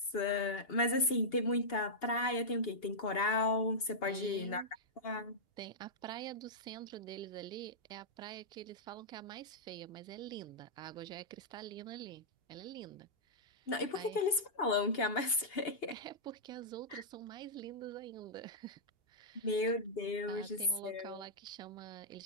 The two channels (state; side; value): late; right; 2.8 ms